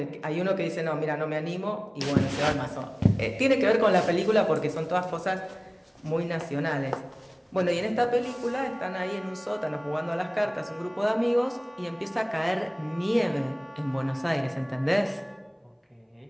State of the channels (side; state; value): both; identical; correlation 1.00